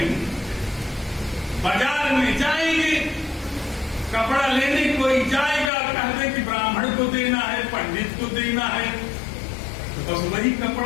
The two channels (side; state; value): right; drops out; at 5.7 s